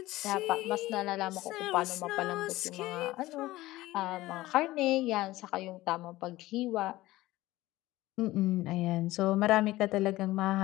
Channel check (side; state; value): right; quieter; 17.5 dB